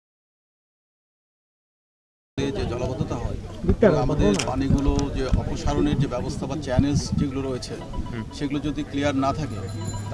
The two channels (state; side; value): identical; both; correlation 1.00